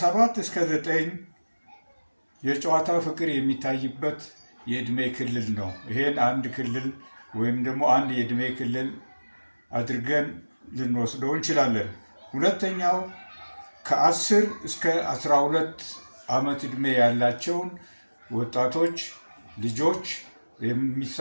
እስከ 9 የጨዋታ ፍቅር የሚታይበት የእድሜ ክልል ነው። ይሄን አንድ ክልል ወይም ደግሞ አንድ የእድሜ ክልል አድርገን ልንወስደው እንችላለን። ሁለተኛው ከ10 እስከ 12 ዓመት ዕድሜ ያላቸውን ወጣቶች ልጆች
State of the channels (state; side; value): inverted; both; correlation -1.00